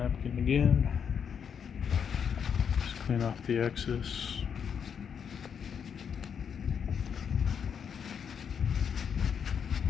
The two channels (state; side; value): quieter; right; 7.3 dB